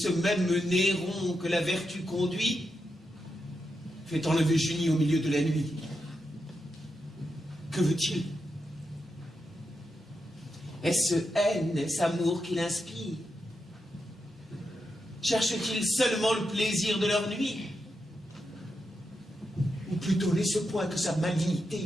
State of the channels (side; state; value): both; normal; correlation 0.86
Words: même Néron que la vertu conduit fait enlever Junie au milieu de la nuit. Que veut-il? Est-ce haine, est-ce amour qu'il inspire? Cherche-t-il seulement le plaisir de leur nuit? Ou plutôt n'est-ce point que sa